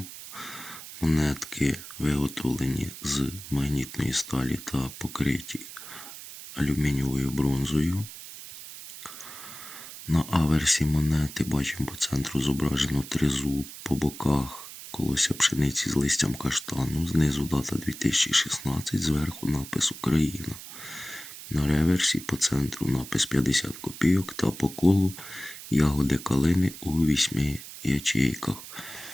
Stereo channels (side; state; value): right; noise; hiss, 13 dB below the sound